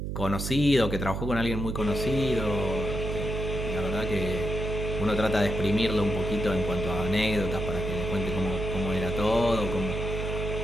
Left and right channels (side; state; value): right; noise; hum, 3 dB below the sound